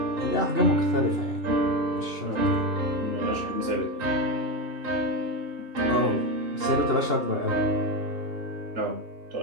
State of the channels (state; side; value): late; left; 2.8 ms